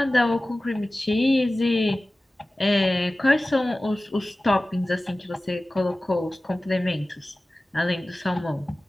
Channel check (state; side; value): normal; both; correlation 0.97